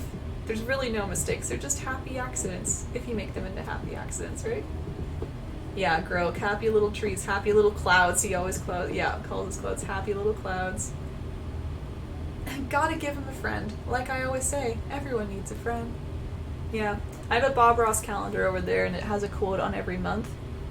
There's really no mistakes. They're just happy accidents, if you make them into happy accidents, right? Yeah, Grok, happy little trees, happy little clouds. He always calls his clouds happy little clouds. Gotta give him a friend. Like I always say, everyone needs a friend. Yeah, I have a Bob Ross calendar over there, and it has a quote on every month.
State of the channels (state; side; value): identical; both; correlation 1.00